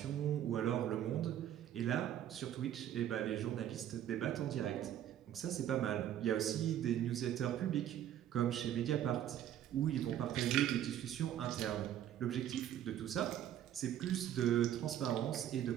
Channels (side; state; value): left; quieter; 11.1 dB